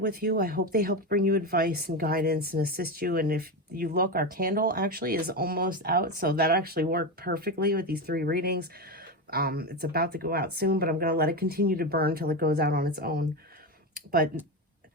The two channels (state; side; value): normal; both; correlation 0.16